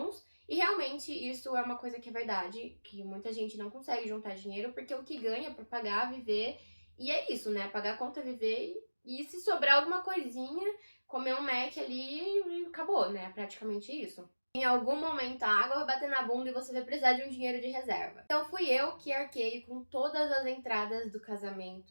E realmente isso é uma coisa que é verdade, que muita gente não consegue juntar dinheiro, porque o que ganha para pagar, viver, e é isso, né? Pagar a conta, viver, e se sobrar alguma coisinha, comer um Mac ali e acabou, né? Praticamente isso. Em algum momento a água vai bater na bunda e você vai precisar de um dinheiro de reserva. Então fui eu que arquei com todas as entradas do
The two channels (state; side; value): inverted; both; correlation -1.00